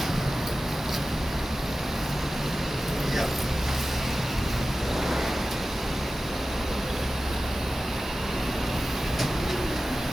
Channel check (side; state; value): both; normal; correlation 0.95